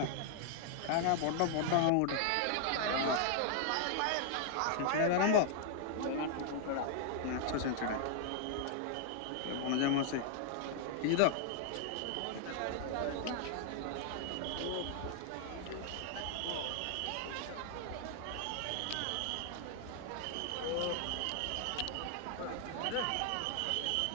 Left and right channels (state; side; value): different; both; correlation 0.00